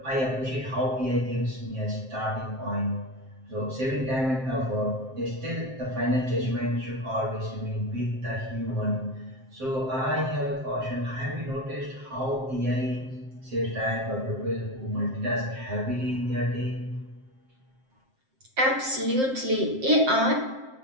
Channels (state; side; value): late; left; 7.6 ms